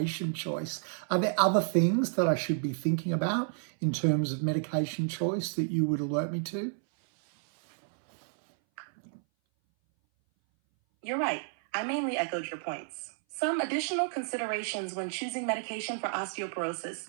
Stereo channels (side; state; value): left; silent; 57 dB below the other